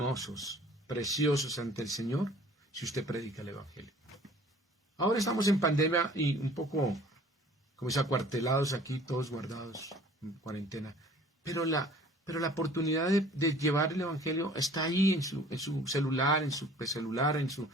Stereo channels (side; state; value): both; normal; correlation 0.51